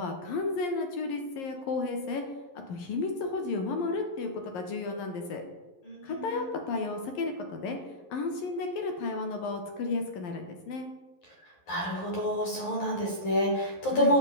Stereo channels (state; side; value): late; right; 11 ms